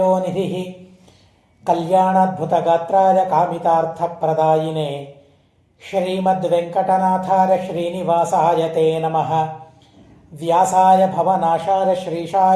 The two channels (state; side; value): identical; both; correlation 1.00